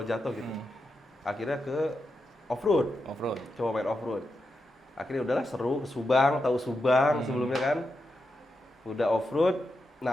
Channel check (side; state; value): both; normal; correlation 0.87